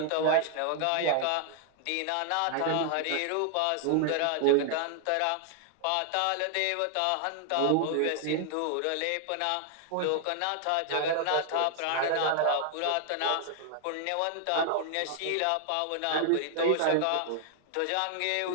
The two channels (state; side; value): different; both; correlation 0.00